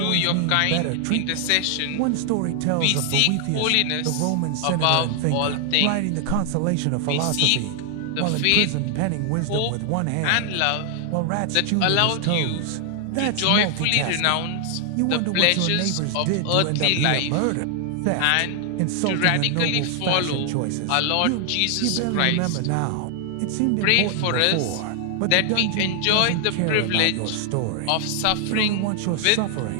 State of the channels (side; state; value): both; different; correlation 0.00